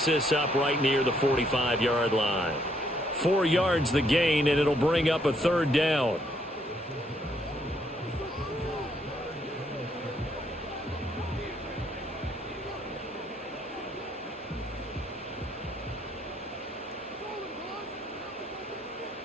this up right near the 45-yard line. 4 yards the gain, and it'll bring up a third down.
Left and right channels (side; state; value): both; normal; correlation 0.70